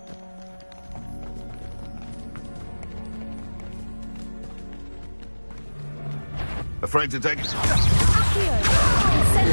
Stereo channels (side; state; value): both; inverted; correlation -1.00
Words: Afraid to take it? Accio!